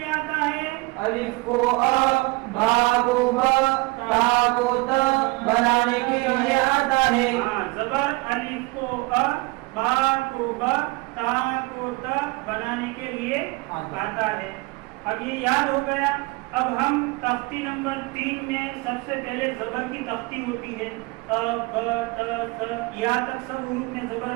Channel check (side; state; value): left; quieter; 24.3 dB